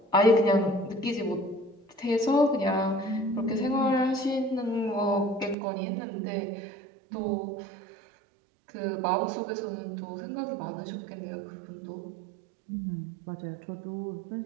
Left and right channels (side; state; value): left; drops out; at 5.6 s